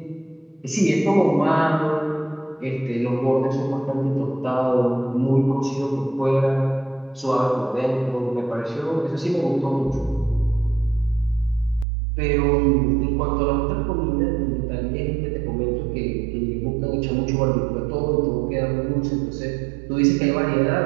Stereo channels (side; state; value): left; drops out; at 11.9 s